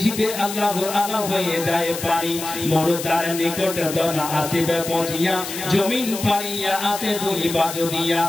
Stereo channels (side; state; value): left; noise; hiss, 8 dB below the sound